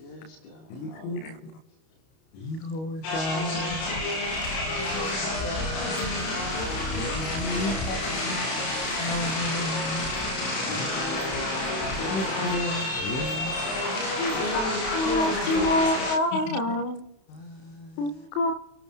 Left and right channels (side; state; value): right; late; 31 ms